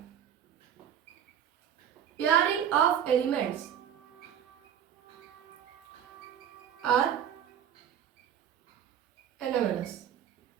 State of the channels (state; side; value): quieter; left; 9.4 dB